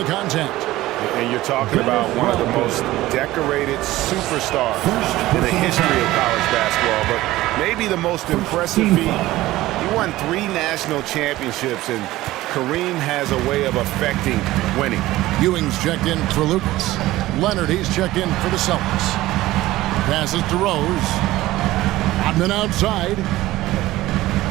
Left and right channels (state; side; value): quieter; left; 16.8 dB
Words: contact. And you're talking about one of the most decorated superstars in the history of college basketball. But maybe the most impressive feat. He won 3 national championships, and Kareem has a way of affecting winning. Ewing's checked in for Lucas. Leonard, he's checked in for the Celtics. Passes to Rose. Rodman outside.